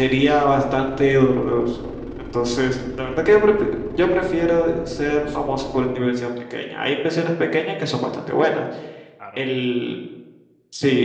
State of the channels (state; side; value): identical; both; correlation 1.00